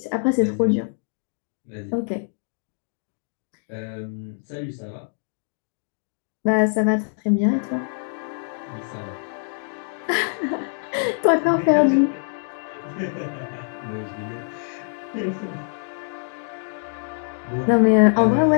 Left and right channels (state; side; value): silent; right; 62 dB below the other